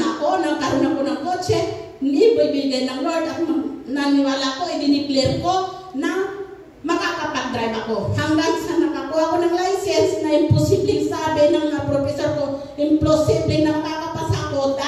ako, nagkaroon ako ng kotse. Hindi ibibigay ng Lord. At naniwala ko, i-declare ko na makakapag-drive ako. Hanggang sa nakakuha ko ng license na imposible sabi ng professor ko, imposible na makakapasa ako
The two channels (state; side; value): identical; both; correlation 1.00